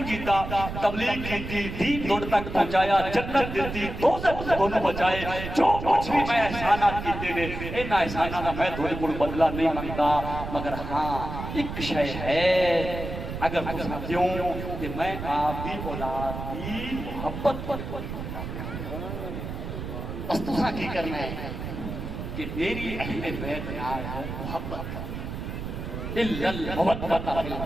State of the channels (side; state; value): right; noise; rumble, 7 dB below the sound